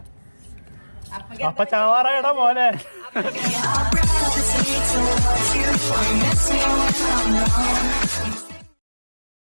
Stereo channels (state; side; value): inverted; both; correlation -1.00